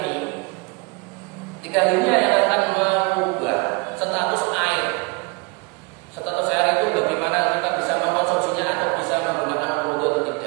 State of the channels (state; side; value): quieter; left; 30.7 dB